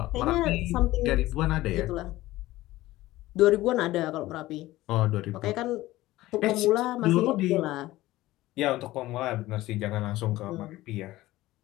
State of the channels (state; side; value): quieter; right; 17.1 dB